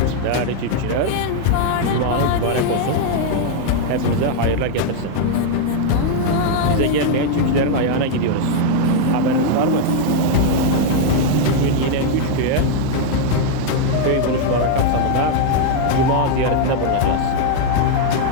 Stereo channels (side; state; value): both; different; correlation 0.00